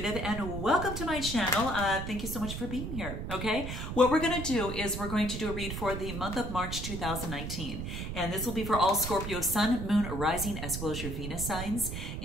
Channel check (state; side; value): noise; right; rumble, 5 dB below the sound